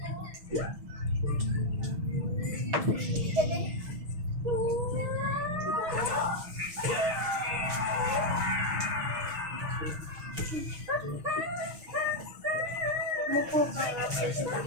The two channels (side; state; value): left; late; 6.4 ms